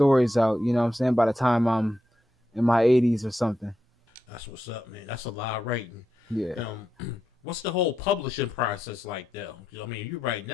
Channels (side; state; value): both; normal; correlation 0.86